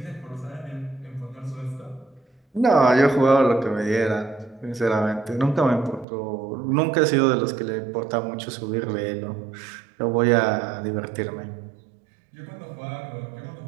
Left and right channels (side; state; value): left; drops out; at 6.1 s